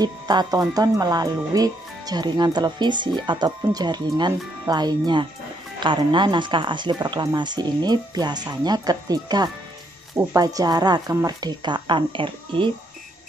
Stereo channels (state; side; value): normal; both; correlation 0.73